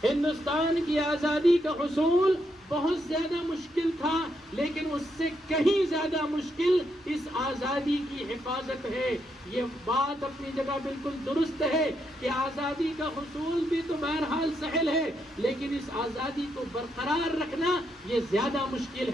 ہندوستان کی آزادی کا حصول بہت زیادہ مشکل تھا، لیکن اس سے کہیں زیادہ مشکل اس آزادی کی حفاظت ہے۔ یہ بات اپنی جگہ بالکل درست ہے کہ آزادی کا حصول بھی تو بہرحال سہل ہے، لیکن اس آزادی کو برقرار رکھنا یہ زیادہ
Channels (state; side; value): normal; both; correlation 0.79